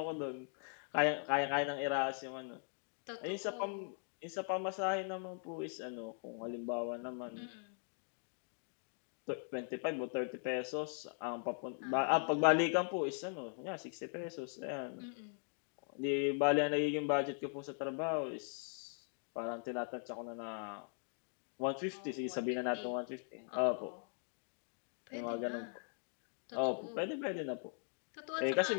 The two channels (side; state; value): right; silent; 51 dB below the other